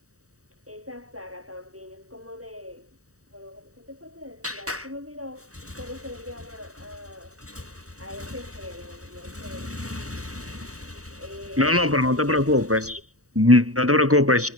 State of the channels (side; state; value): left; late; 0.66 ms